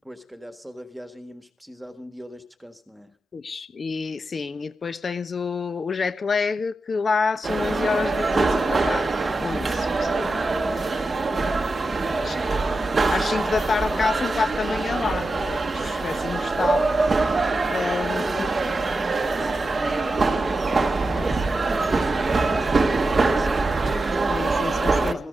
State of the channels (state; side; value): normal; both; correlation 0.90